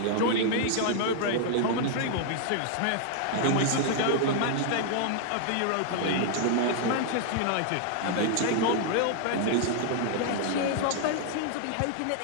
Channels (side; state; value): both; different; correlation 0.00